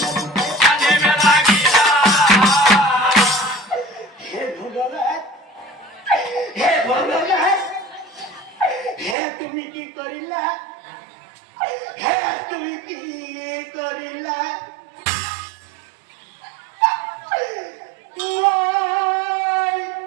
তুমি কি কৰিলা তুমি কি কৰিলা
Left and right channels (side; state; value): left; drops out; at 9.2 s